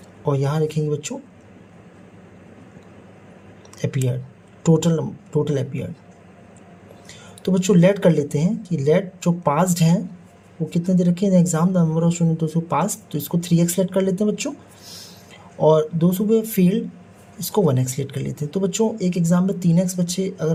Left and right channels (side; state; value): both; identical; correlation 1.00